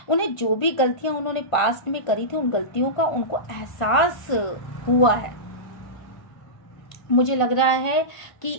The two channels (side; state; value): right; late; 1.5 ms